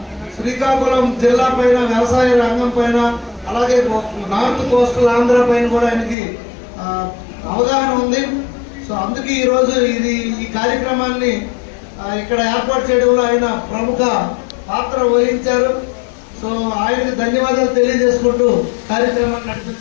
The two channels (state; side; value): drops out; right; at 6.2 s